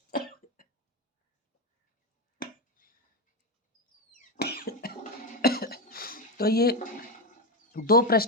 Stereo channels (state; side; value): normal; both; correlation 0.11